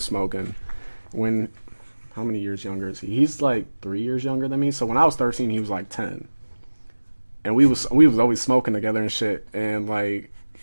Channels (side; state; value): both; inverted; correlation -1.00